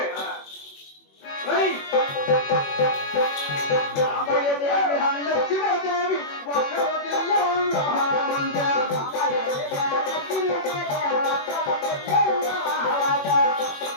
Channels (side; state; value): right; late; 21 ms